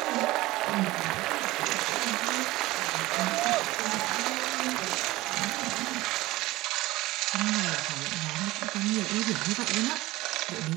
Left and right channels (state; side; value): quieter; left; 18.8 dB